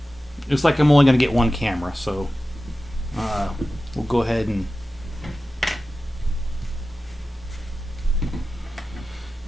Looks like I'm only going to get 1 camera, so we'll go ahead and...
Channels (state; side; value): normal; both; correlation 0.94